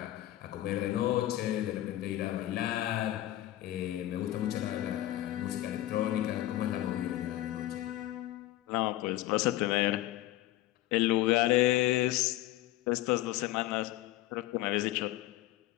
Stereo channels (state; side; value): quieter; right; 15.1 dB